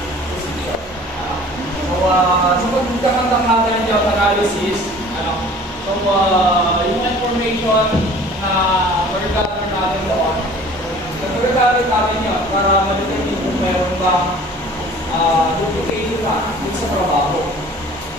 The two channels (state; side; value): normal; both; correlation 0.47